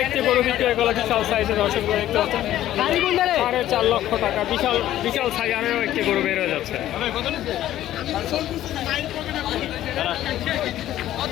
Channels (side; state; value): right; quieter; 13.1 dB